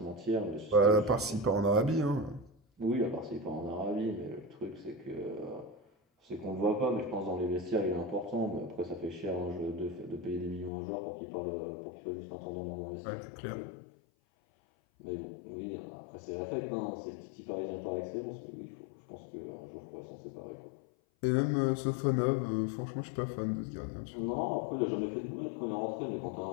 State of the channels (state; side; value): drops out; right; at 10.7 s